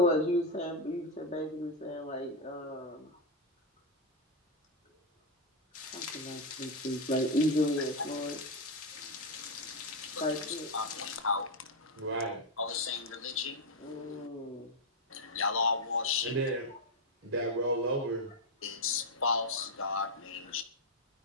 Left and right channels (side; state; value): both; normal; correlation 0.03